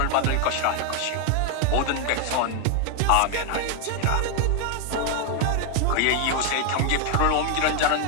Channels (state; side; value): different; both; correlation 0.01